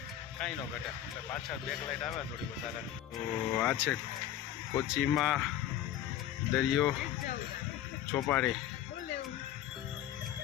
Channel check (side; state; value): right; quieter; 11.6 dB